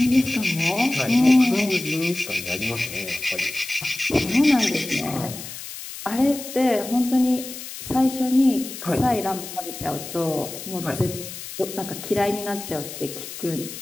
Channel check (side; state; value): left; noise; hiss, 11 dB below the sound